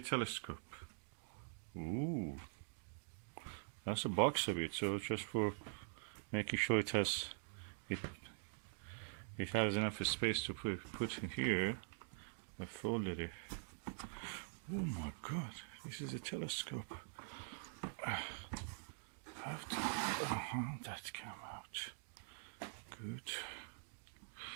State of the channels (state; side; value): silent; left; digital silence